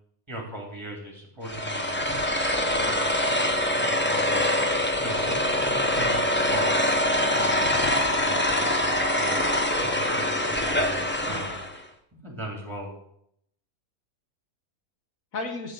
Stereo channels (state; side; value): normal; both; correlation -0.04